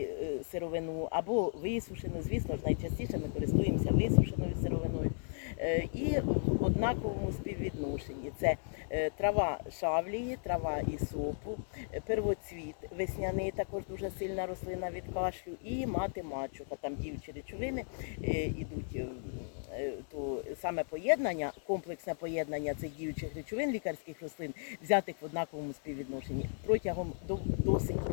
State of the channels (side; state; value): right; silent; digital silence